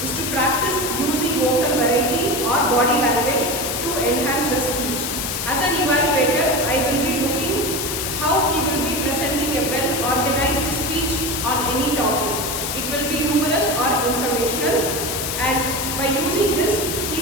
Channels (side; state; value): left; noise; hiss, 3 dB below the sound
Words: practice using vocal variety or body language to enhance the speech. As an evaluator, I will be looking how he will be presenting a well-organized speech on any topic. It will be humorous or informational, and by using this, he